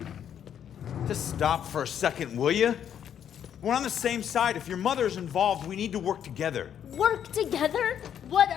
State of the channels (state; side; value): quieter; right; 9.2 dB